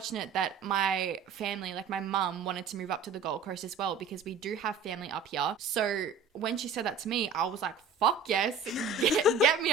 that my family, like my mum, wanted to move up to the Gold Coast as well, because we do have family up here. So when she said that to me, I was like, fuck yes, get me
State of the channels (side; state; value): left; quieter; 5.1 dB